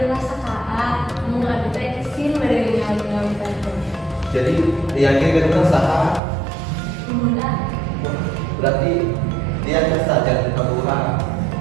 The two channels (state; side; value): drops out; left; at 6.2 s